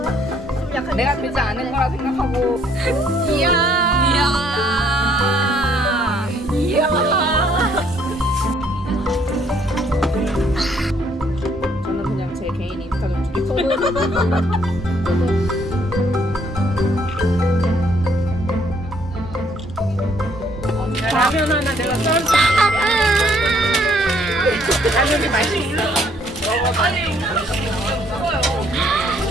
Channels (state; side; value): normal; both; correlation 0.66